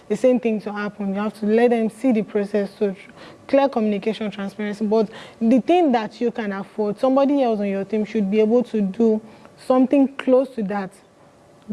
the same thing to happen. You have to let them see the process. So clear communication, transparency. But the thing that you can afford, somebody else on your team should be able to do something close to that.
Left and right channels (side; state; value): both; identical; correlation 1.00